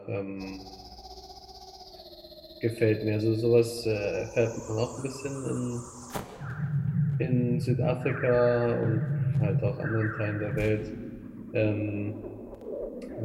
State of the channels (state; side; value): identical; both; correlation 1.00